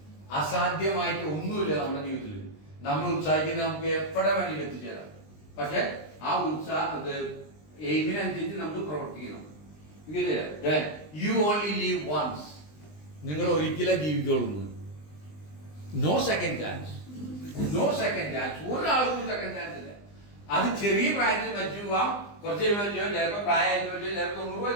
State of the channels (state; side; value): late; right; 20 ms